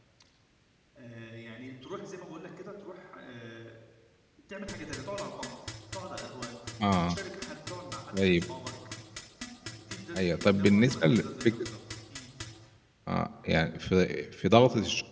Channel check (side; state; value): both; identical; correlation 1.00